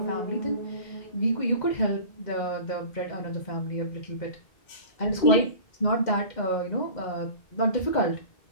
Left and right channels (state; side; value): late; right; 2.1 ms